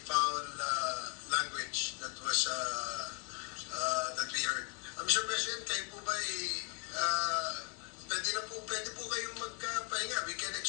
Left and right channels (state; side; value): quieter; right; 32.9 dB